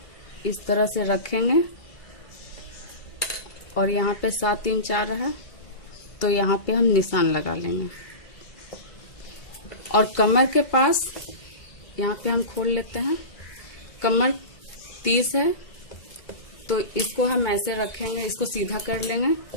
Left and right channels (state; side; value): late; right; 2.3 ms